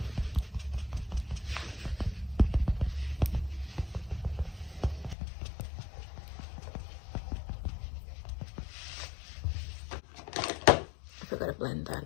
I forgot to blend that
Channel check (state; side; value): drops out; right; at 5.2 s